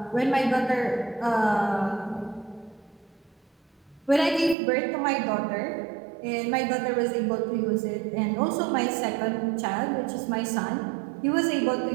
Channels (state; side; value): drops out; left; at 4.5 s